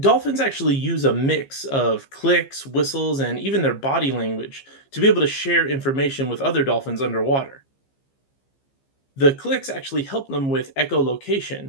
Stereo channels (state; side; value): late; right; 15 ms